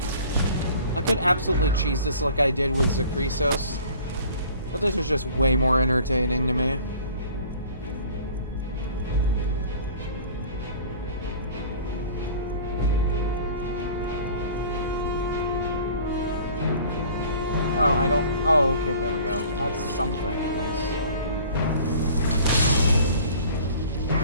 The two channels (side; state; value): both; inverted; correlation -0.47